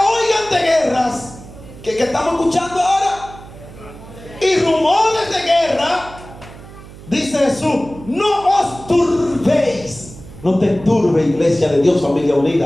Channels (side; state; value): right; noise; hum, 18 dB below the sound